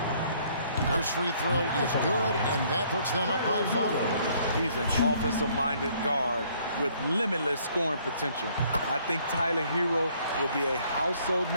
First free throw is good, and that puts them up by 5. He's an offensive-minded guard with limitless scoring potential. I think Tyler Hero will be a household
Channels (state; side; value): inverted; both; correlation -0.63